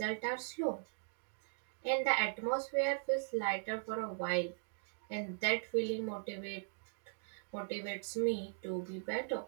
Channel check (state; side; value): silent; left; digital silence